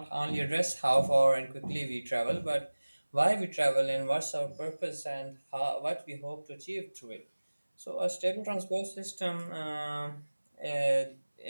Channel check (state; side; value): inverted; both; correlation -1.00